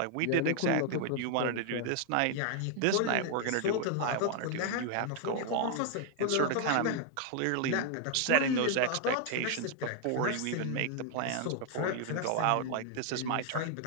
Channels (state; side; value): different; both; correlation 0.00